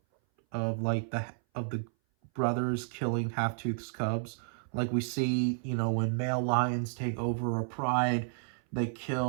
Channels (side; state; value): left; silent; 57 dB below the other